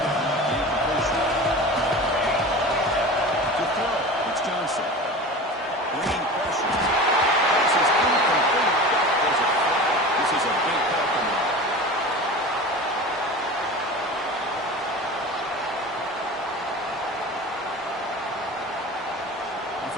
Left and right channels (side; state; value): both; normal; correlation 0.34